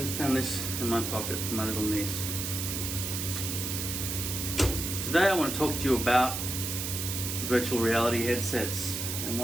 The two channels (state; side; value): noise; right; hiss, 3 dB below the sound